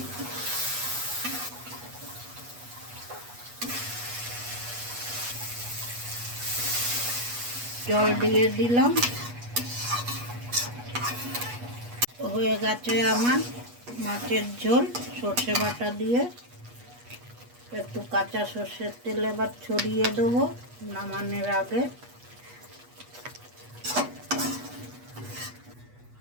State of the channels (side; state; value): left; late; 8.3 ms